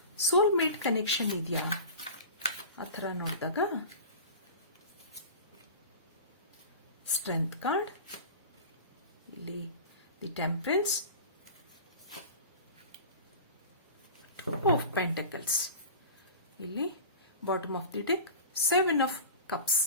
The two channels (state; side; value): inverted; both; correlation -0.34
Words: ಸೋಲ್ಮೇಟ್ ಕನೆಕ್ಷನ್ ಇದೆಯಾ ಆ ಥರ ನೋಡಿದಾಗ ಸ್ಟ್ರೆಂತ್ ಕಾರ್ಡ್, ಇಲ್ಲಿ ದಿ ಟೆಂಪರೆನ್ಸ್, ಆಫ್ ಪೆಂಟಕಲ್ಸ್, ಇಲ್ಲಿ bottom of the deck 7 of cups.